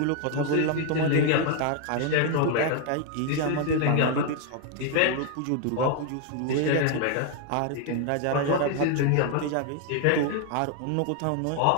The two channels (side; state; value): both; different; correlation 0.00